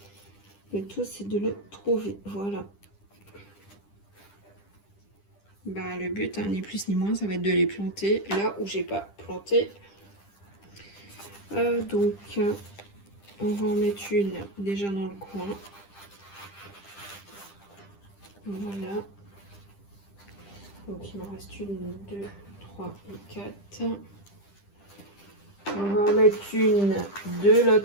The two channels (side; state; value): right; late; 10 ms